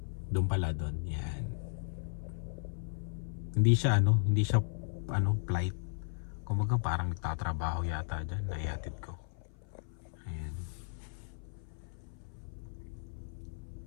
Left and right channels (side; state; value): right; silent; 54 dB below the other